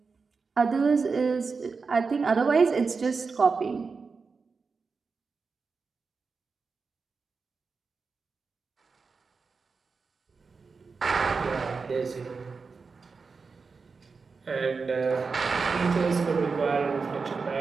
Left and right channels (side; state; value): left; quieter; 4.8 dB